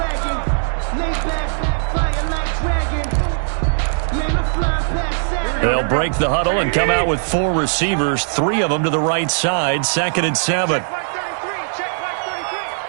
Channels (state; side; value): silent; left; digital silence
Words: They'll break the huddle and come out with 4 receivers, 3 of them to the right side, 2nd and 7.